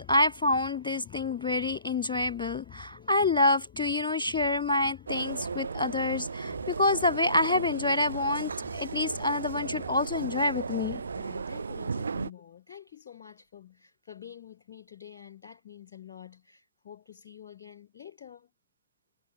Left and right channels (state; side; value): inverted; both; correlation -0.52